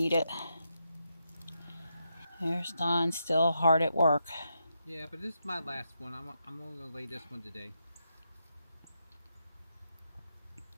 it. There's Dawn still hard at work. Yeah, but this is my last one. I'm only going to lay this one today.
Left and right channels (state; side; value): inverted; both; correlation -0.83